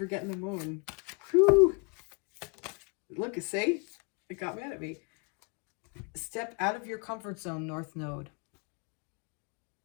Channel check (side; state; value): right; quieter; 33.4 dB